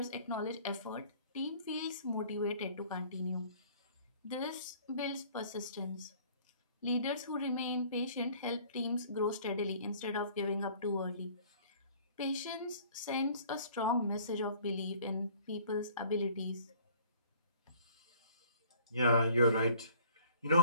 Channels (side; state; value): both; inverted; correlation -0.54